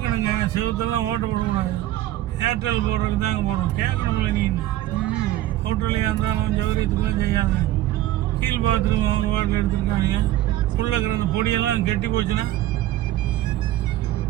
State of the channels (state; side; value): quieter; left; 14.5 dB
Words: செவத்தெல்லாம் ஓட்ட போடக்கூடாது. ஏர்டெல் போடுறதுக்கு தாங்க போடுறோம். கேட்கணுங்கள நீ. ஹோட்டல்லையாக இருந்தாலும் உன் சௌகரியத்துக்குலாம் செய்யாத. கீழ் பாத்ரூம் அவங்க வாட்டில் எடுத்துருக்காங்க. உள்ளே இருக்கிற அந்த பொடியெல்லாம் கெட்டி போச்சுன்னா